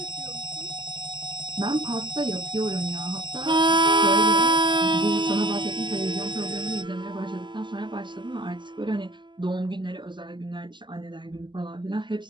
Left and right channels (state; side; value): late; left; 0.22 ms